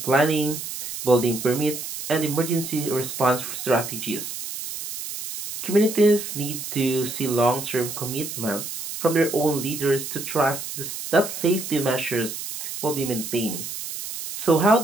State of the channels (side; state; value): right; noise; hiss, 7 dB below the sound